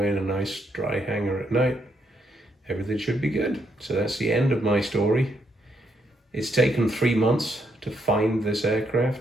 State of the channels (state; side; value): normal; both; correlation 0.76